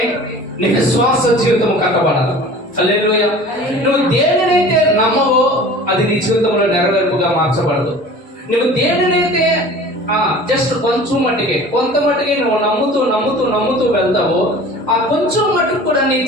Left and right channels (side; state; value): both; normal; correlation 0.42